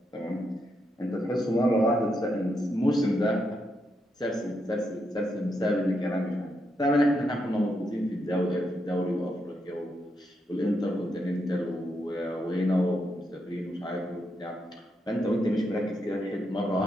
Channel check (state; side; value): normal; both; correlation 0.81